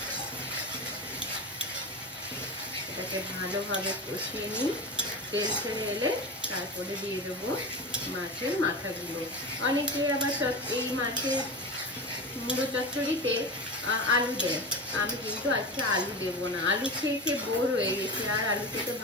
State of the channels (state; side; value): normal; both; correlation 0.25